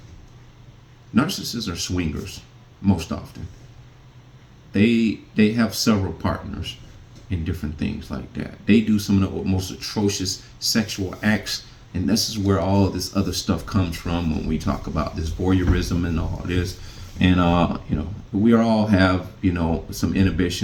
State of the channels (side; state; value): both; identical; correlation 1.00